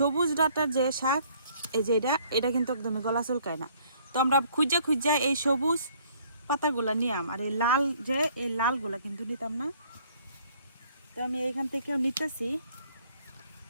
ডাঁটার যে শাক, এই যে এটা কিন্তু একদমই গলা চুলকায় না। তো আমরা খুঁজা খুঁজা এই সবুজ পাতাগুলা নিয়াম, আর এই লাল যে এই লালগুলা কিন্তু নিতাম না। তো আমি এখান থেকেও নিতেছি।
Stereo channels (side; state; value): both; inverted; correlation -0.61